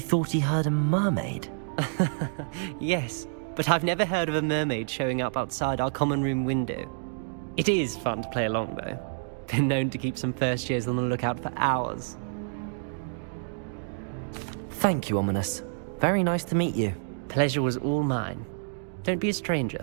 thought he heard a mermaid? Yes, but I've never heard of a mermaid showing up outside our common room window. It is fun to play along, though. Been known to keep some first years on the lookout for hours. Thank you, Ominous. Very nice to meet you. Pleasure was all mine. Don't be a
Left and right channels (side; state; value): left; silent; digital silence